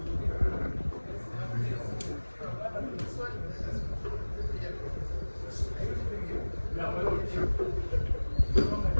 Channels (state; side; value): inverted; both; correlation -1.00